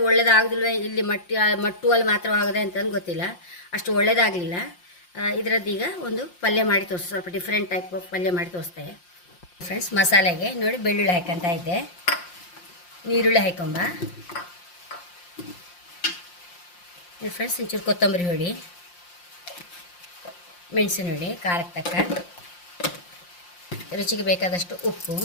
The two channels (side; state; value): right; late; 5.7 ms